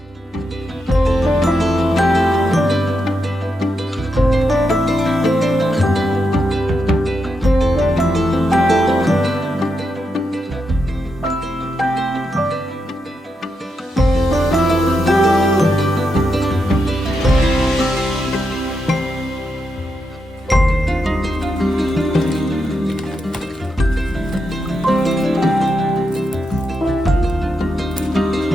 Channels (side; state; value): both; normal; correlation 0.84